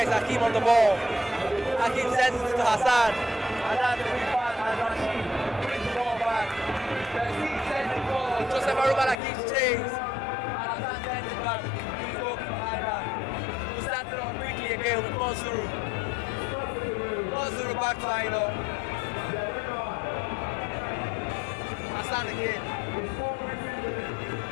is Hakim on the ball. Hakim sends it to Hassan. And that's the big pass and Rashid brings the ball back. Sends it forward. Joseph Arumala gives chase. And Hassan sends it back to his goalkeeper Aina, who starts it on quickly again with Monsuru. Monsuru back to Aina. Hassan again.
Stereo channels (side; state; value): right; drops out; at 9.2 s